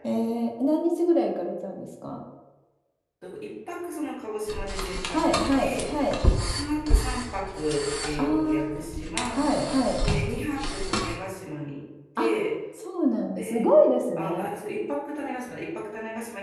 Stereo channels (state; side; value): identical; both; correlation 1.00